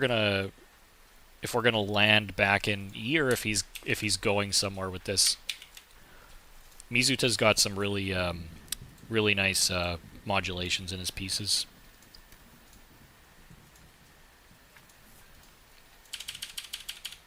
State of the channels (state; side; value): identical; both; correlation 1.00